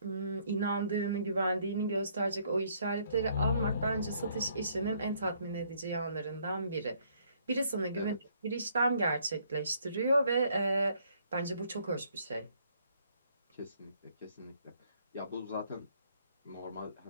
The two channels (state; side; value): inverted; both; correlation -0.66